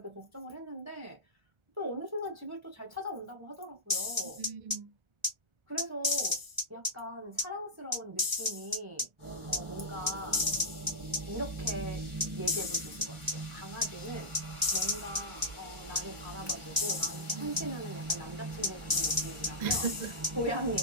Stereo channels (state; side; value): late; left; 1.3 ms